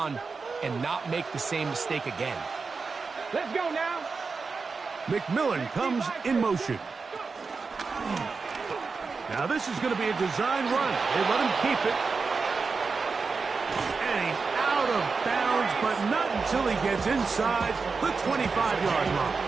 and not make the same mistake again. Let's go now. McMillan comes in motion. Now this is going to be a design run. They let him keep it. And he's out of bounds, but not until he gets inside the 25-yard line.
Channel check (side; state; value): left; quieter; 4.6 dB